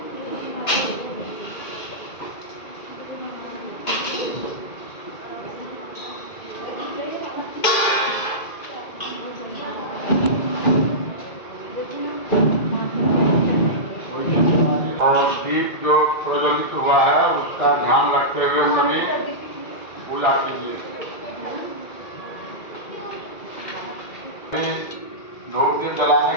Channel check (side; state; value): right; late; 2.5 ms